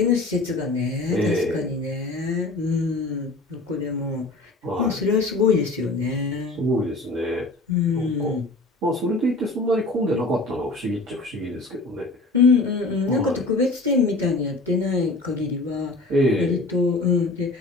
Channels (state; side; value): quieter; right; 3.0 dB